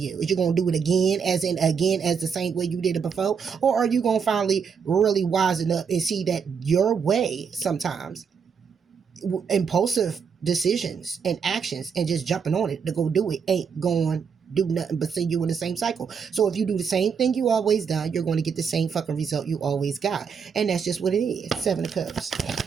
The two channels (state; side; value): quieter; left; 6.4 dB